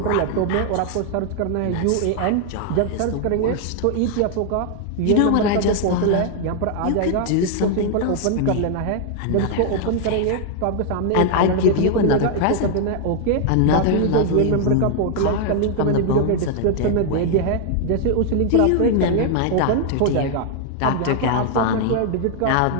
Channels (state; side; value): different; both; correlation 0.00